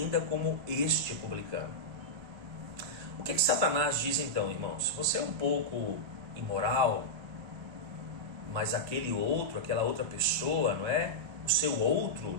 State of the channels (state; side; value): late; left; 1.3 ms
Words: como este publicano. O que Satanás diz então, irmãos? Você é um pouco imoral, mas aquele outro, aquela outra pessoa, o seu outro,